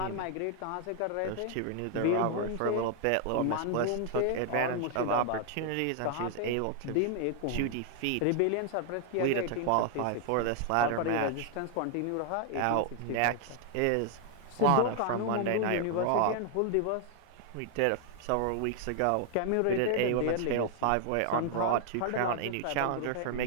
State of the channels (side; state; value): both; different; correlation 0.00